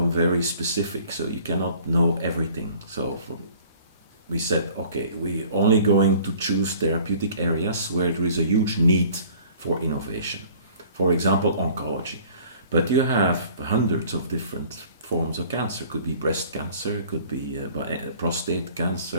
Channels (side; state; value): both; inverted; correlation -0.52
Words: very specific, so you cannot know everything. So we said, okay, we're only going to choose therapeutic areas where there is a huge need for innovation. For example, oncology. But you have hundreds of different forms of cancer. Could be breast cancer, could be prostate